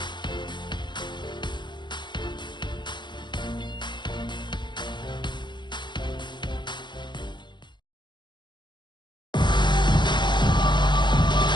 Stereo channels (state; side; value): late; right; 0.22 ms